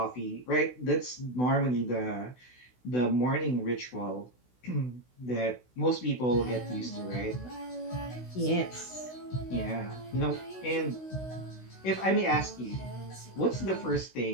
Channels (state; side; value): late; right; 16 ms